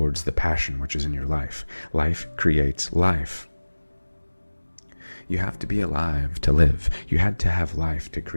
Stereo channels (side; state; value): both; inverted; correlation -1.00